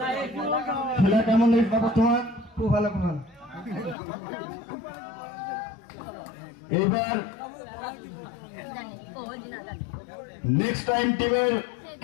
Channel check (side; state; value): right; drops out; at 4.0 s